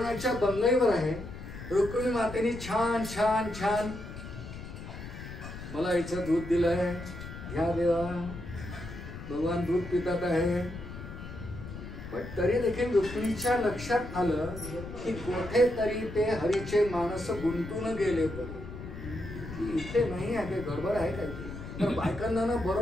बंगईवर आहे. रुक्मिणी मातेने छान छान छान मला इथं दूध दिलंय, घ्या देवा. भगवान दूध पितात आहे. पण तरी देखील रुक्मिणीच्या लक्षात आलं की कोठे तरी ते हरीचे मानस गुंतून गेले परी. इथे नाही आहे, गडबड आहे काय. तर बायकांना ना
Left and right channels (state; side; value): noise; left; rumble, 11 dB below the sound